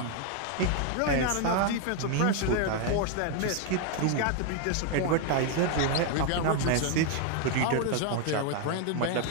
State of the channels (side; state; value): both; different; correlation 0.01